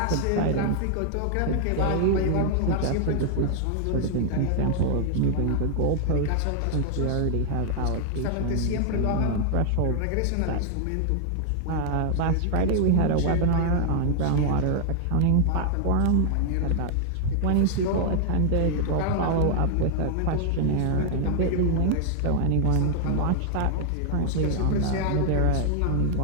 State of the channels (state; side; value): different; both; correlation 0.00